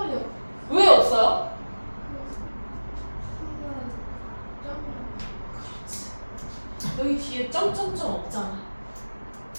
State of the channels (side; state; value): both; inverted; correlation -1.00